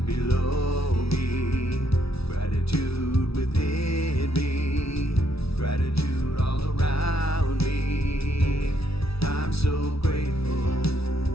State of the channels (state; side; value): late; right; 0.76 ms